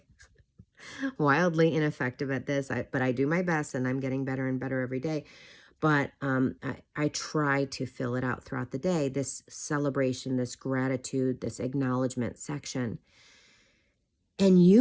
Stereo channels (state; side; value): identical; both; correlation 1.00